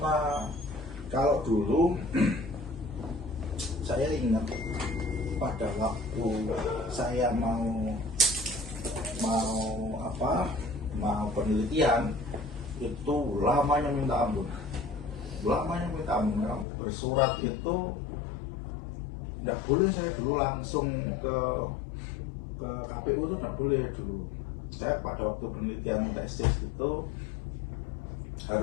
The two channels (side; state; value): right; drops out; at 16.7 s